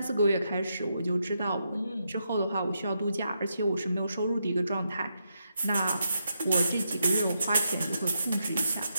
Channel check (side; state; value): both; inverted; correlation -0.82